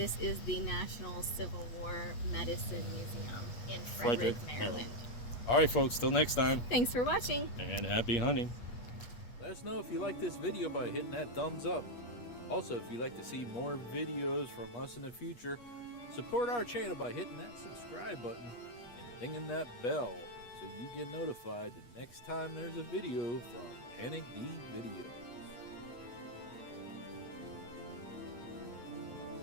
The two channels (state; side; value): late; right; 8.5 ms